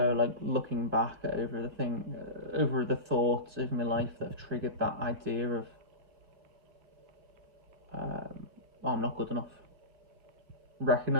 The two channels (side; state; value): left; late; 2.2 ms